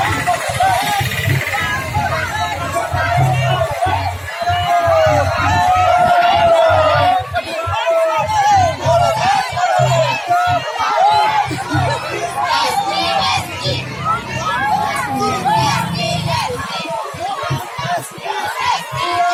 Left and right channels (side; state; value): both; identical; correlation 1.00